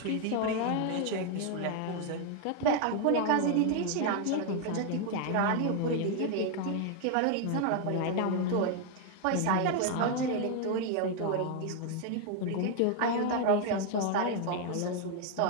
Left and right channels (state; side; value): different; both; correlation 0.00